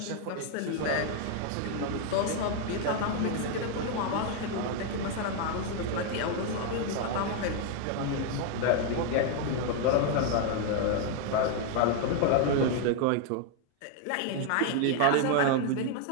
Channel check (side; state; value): both; different; correlation 0.00